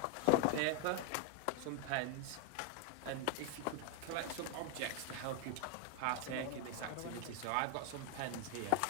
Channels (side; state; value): both; different; correlation 0.01